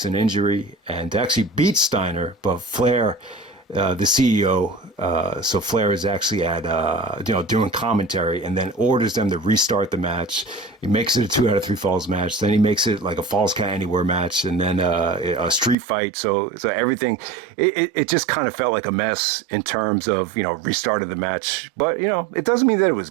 an injury and actually beats Steiner, but Flair, the CEO, so Flair is actually at, doing commentary and then orders them to restart the match. He makes it a 2 out of 3 falls match. Then he makes it like a falls count anywhere match and then a street fight. So everything, it just kind of felt like a mess in terms of, restarted the match. But, it doesn't mean that it was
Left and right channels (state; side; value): drops out; left; at 15.8 s